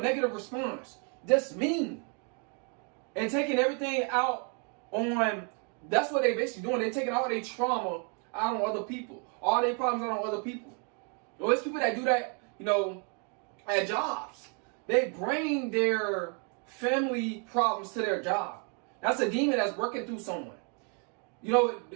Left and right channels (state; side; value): quieter; left; 37.8 dB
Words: negative response. Just mean. And taking everything out on That's what they basically doing. They taking all their trauma out on other people. All their problems out on other people. Those people that do that, at jobs. They bring their family problems to their job. That's a demon that's working through someone.